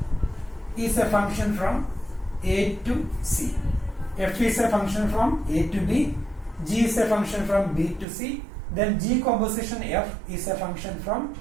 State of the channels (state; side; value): drops out; left; at 8.1 s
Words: is a function from A to C. F is a function from A to B, G is a function from B to C. Then G composition f is a function from